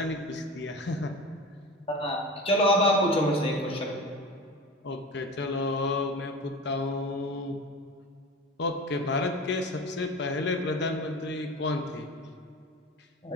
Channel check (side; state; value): both; normal; correlation 0.32